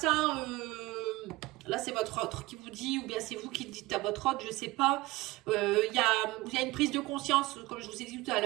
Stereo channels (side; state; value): left; quieter; 20.5 dB